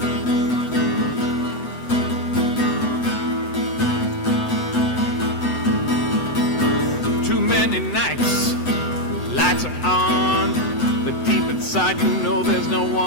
20 nights, lights are on, but deep inside you know there's no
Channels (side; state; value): right; late; 7.9 ms